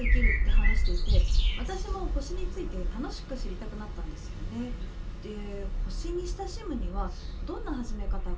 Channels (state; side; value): identical; both; correlation 1.00